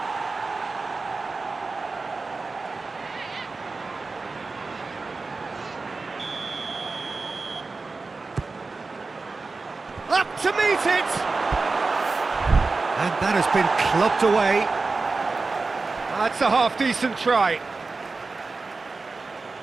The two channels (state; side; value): quieter; left; 3.9 dB